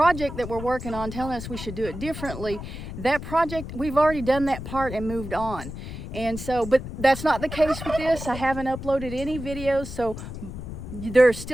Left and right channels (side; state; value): left; noise; rumble, 9 dB below the sound